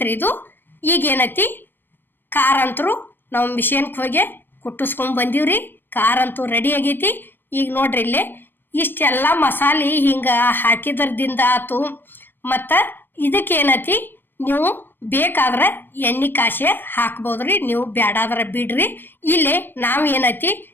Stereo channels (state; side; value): late; right; 0.095 ms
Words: ಇದು. ಈಗೇನೈತಿ ಖಾರ ಅಂತರೂ ನಾವು ಮಿಷನ್ಗೆ ಹೋಗಿ ಕುಟ್ಟಿಸ್ಕೊಂಡ್ ಬಂದೀವ್ರಿ. ಖಾರ ಅಂತೂ ರೆಡಿ ಆಗೈತಿ. ಈಗ ನೋಡ್ರಿ ಇಲ್ಲೇ ಇಷ್ಟೆಲ್ಲ ಮಸಾಲೆ ಹಿಂಗೆ ಹಾಕಿದ್ರದಿಂದ ಆತು. ಮತ್ತು ಇದಕ್ಕೇನೈತಿ ನೀವು ಬೇಕಾದ್ರೆ ಎಣ್ಣೆ ಕಾಸೆ ಹಾಕ್ಬೋದ್ರಿ, ನೀವು ಬ್ಯಾಡಾದ್ರೆ ಬಿಡ್ರಿ. ಇಲ್ಲಿ ನಾವು ಏನೈತಿ